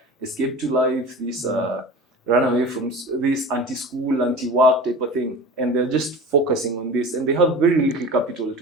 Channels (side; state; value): both; normal; correlation 0.35